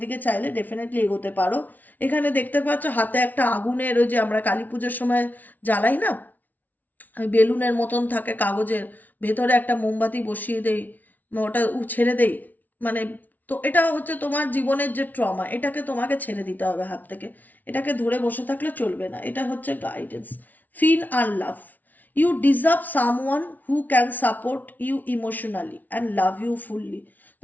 দিকে চাইলে ডেফিনেটলি এগোতে পারো। এখানে দেখতে পাচ্ছ হাতে একটা আগুনের, ওই যে আমরা কালী পুজোর সময় জ্বালাই না, ওই বেলুনের মতন থাকে কাগজের, ভেতরে একটা মোমবাতি বসিয়ে দেই, ওটা ছেড়ে দেই, মানে তো এটা হচ্ছে তোমার জীবনের যে ট্রমা, এটাকে তোমাকে ছেড়ে দিতে হবে হাত থেকে। এটাকে ধরে বসে থাকলে চলবে না, এটা হচ্ছে গাইডেন্স। ফিল আর love, you deserve someone who can support you emotionally and love you fully.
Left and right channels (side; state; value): right; late; 0.079 ms